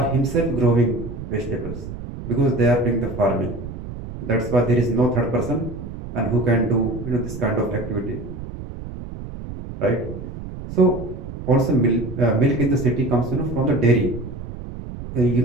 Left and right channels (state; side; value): noise; right; rumble, 10 dB below the sound